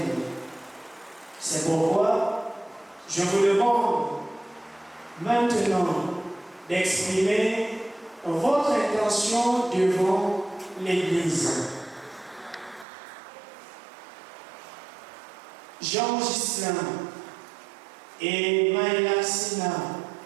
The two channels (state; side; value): drops out; left; at 12.9 s